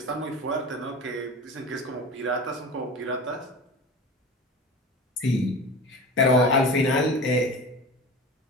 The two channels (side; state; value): both; normal; correlation 0.33